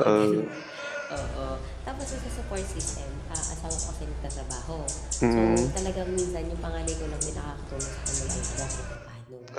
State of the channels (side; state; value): both; identical; correlation 1.00